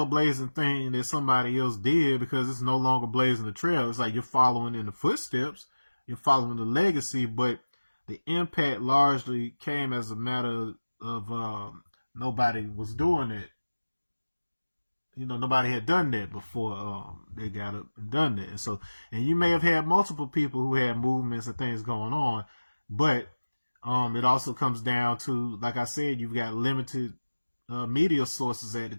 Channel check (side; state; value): both; inverted; correlation -1.00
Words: thing that somebody else did because it's no longer blazing the trail. It's like you're following in the footsteps, you're following the legacy, but the impact largely came as a matter of nobody was doing it. Nobody had done that before they got up and done that. And you may have had multiple people who had movements and things going on, but it also comes down to, like I said, you've got limited media sources at the